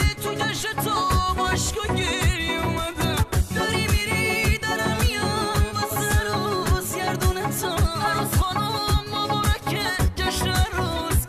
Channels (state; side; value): identical; both; correlation 1.00